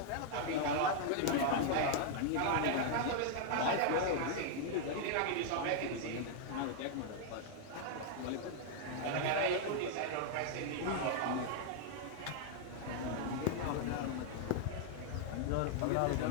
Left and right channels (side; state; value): both; different; correlation 0.00